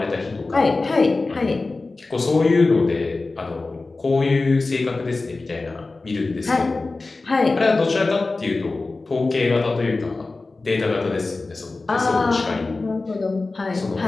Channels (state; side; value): quieter; right; 3.5 dB